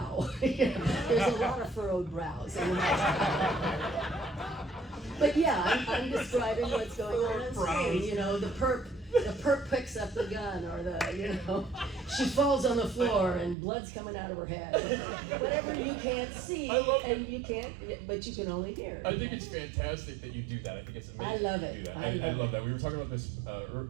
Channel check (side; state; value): left; drops out; at 13.6 s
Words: There's a lot of furrowed brows. But yeah, I'm describing what's going on screen. You know, the perp picks up the gun, or she falls on the floor and blood's coming out of her head. Whatever you can't see, and you can't, but you can only hear. I think it's fantastic that you do that. I think it's amazing. I love it. You do that. I love that. We were talking about this